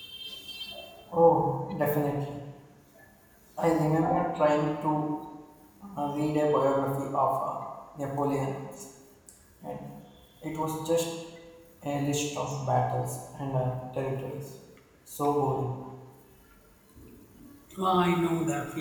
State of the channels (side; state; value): both; identical; correlation 1.00